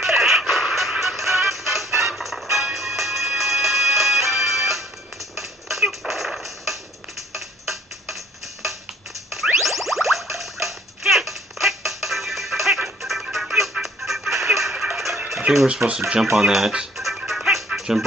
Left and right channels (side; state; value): both; normal; correlation 0.57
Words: I think we're supposed to jump on that, jump